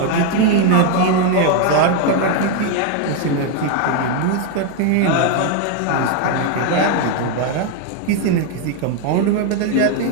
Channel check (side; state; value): both; different; correlation 0.01